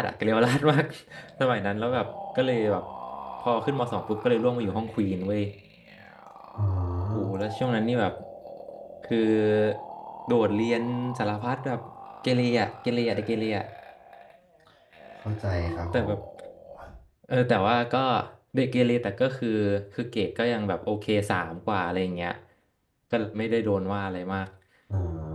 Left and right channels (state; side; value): identical; both; correlation 1.00